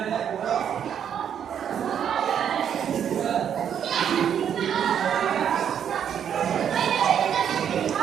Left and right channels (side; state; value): left; quieter; 8.7 dB